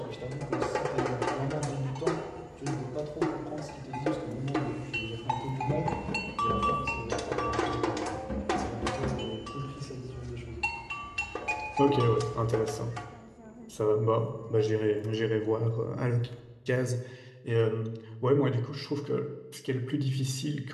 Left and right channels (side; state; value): both; identical; correlation 1.00